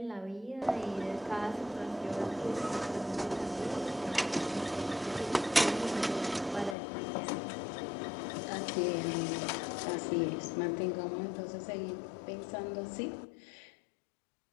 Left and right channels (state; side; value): drops out; right; at 6.8 s